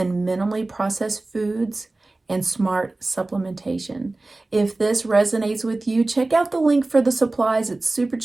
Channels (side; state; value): left; quieter; 3.0 dB